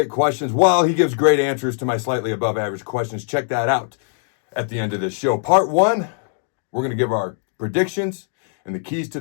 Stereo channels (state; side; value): silent; right; digital silence